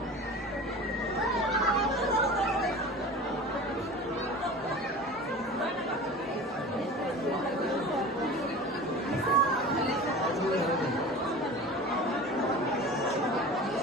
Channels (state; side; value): normal; both; correlation 0.36